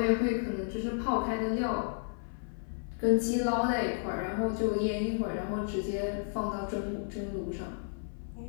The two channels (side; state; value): right; silent; 56 dB below the other